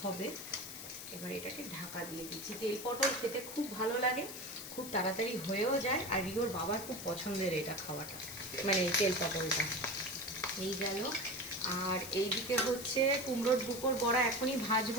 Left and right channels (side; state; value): left; noise; hiss, 10 dB below the sound